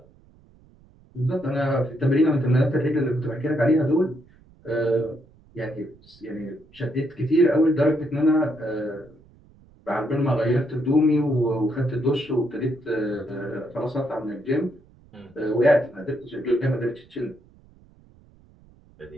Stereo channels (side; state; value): right; noise; rumble, 28 dB below the sound